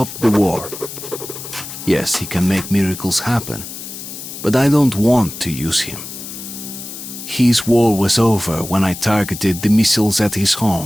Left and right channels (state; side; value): noise; left; hiss, 10 dB below the sound